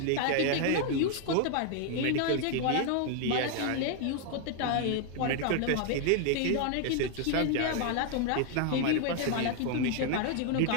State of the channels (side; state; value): both; different; correlation 0.00